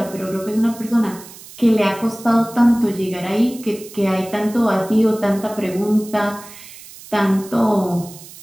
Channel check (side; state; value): right; noise; hiss, 18 dB below the sound